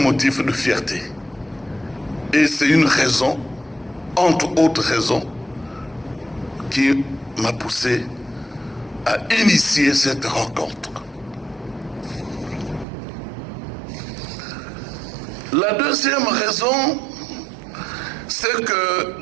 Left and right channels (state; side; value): drops out; left; at 12.9 s